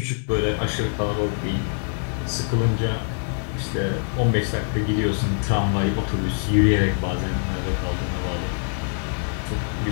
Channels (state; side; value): silent; right; 63 dB below the other